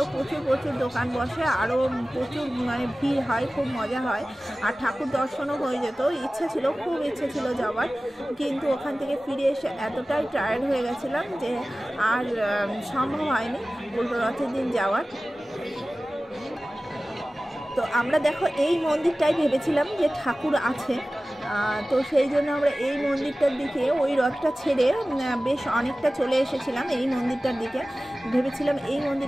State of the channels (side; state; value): both; normal; correlation 0.97